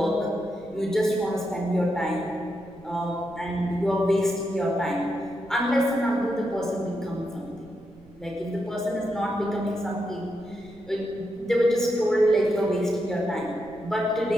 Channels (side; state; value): right; noise; rumble, 24 dB below the sound